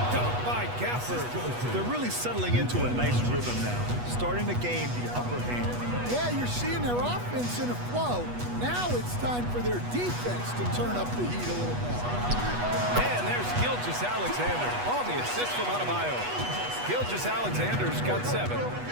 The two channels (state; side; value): late; left; 8.2 ms